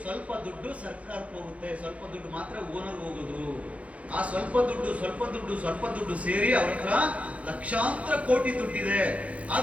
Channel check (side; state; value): left; late; 0.065 ms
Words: ಸ್ವಲ್ಪ ದುಡ್ಡು ಸರ್ಕಾರಕ್ಕೆ ಹೋಗುತ್ತೆ, ಸ್ವಲ್ಪ ದುಡ್ಡು ಮಾತ್ರ ಓನರ್ ಹೋಗೋದು. ಆ ಸ್ವಲ್ಪ ದುಡ್ಡು ಸೇರಿ ಅವ್ರ ಹತ್ರ ಲಕ್ಷಾಂತರ ಕೋಟಿ ದುಡ್ಡಿದೆ.